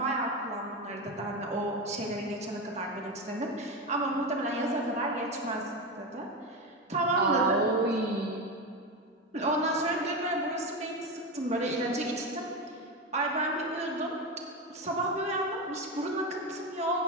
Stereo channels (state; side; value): normal; both; correlation 0.17